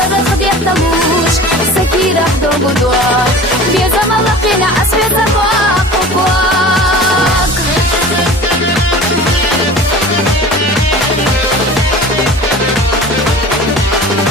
خد يحتبوش سكيرة دوبو دوام بيزا ملقينا أسفل زفاق أقوال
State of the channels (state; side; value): normal; both; correlation 0.39